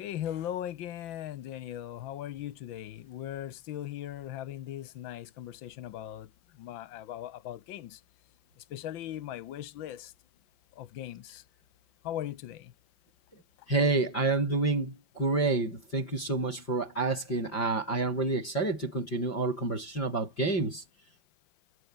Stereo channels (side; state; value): right; late; 5.8 ms